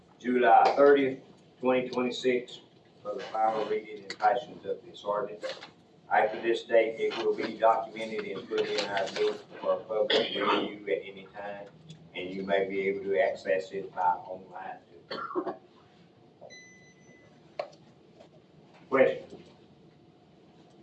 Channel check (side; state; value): both; identical; correlation 1.00